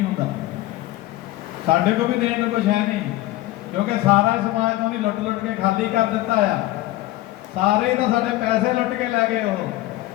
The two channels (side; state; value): right; quieter; 17.0 dB